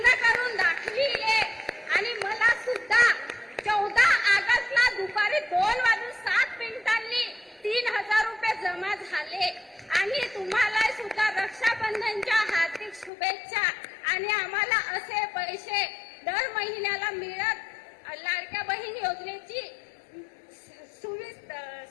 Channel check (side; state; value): right; drops out; at 13.1 s